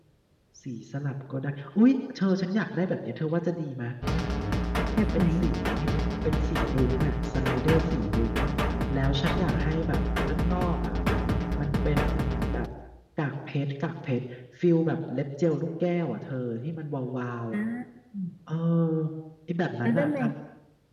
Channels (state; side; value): identical; both; correlation 1.00